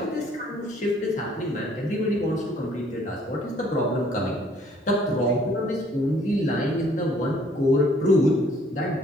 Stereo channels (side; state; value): both; normal; correlation 0.61